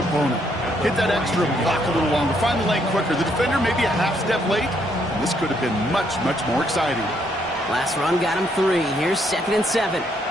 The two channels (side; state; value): both; normal; correlation 0.72